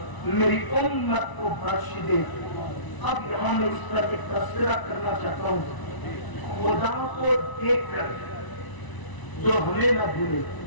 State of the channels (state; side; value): late; right; 1.0 ms